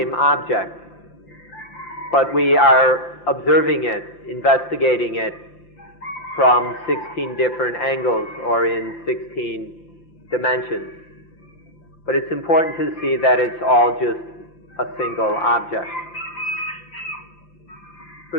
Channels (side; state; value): right; late; 5.8 ms